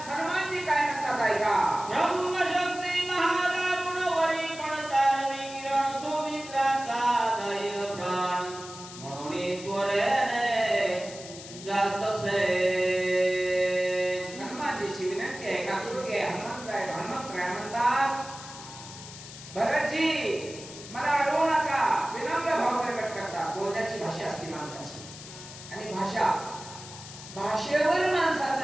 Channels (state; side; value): noise; left; hiss, 14 dB below the sound